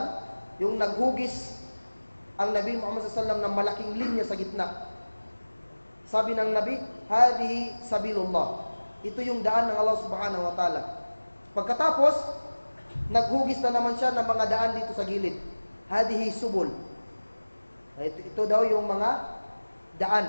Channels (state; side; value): inverted; both; correlation -1.00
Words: yung naghugis ang Nabi Muhammad sallallahu alaihi wasallam ng malaking linya sa gitna. Sabi ng Nabi, hadihi sabilullah. Ito yung daan ng Allah subhanahu wa ta'ala. Pagkatapos, naghugis na naman siya ng mga daan dito sa gilid. Hadihi subul. Ito daw yung mga daan.